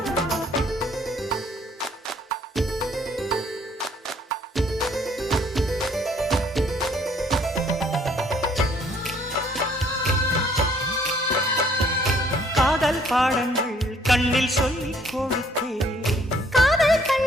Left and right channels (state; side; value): normal; both; correlation 0.62